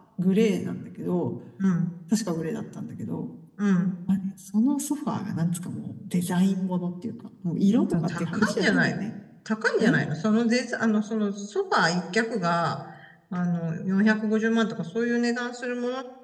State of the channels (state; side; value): identical; both; correlation 1.00